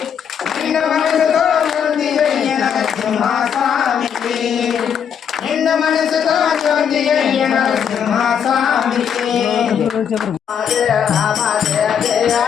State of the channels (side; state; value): right; quieter; 7.9 dB